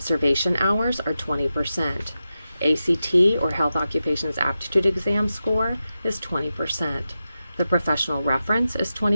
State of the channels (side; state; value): both; inverted; correlation -0.91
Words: hours are 20%. ACT, or Health Occupations Aptitude Exam score, is 20%. The professional reference is